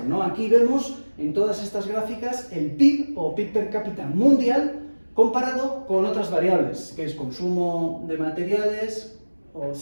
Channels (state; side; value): inverted; both; correlation -1.00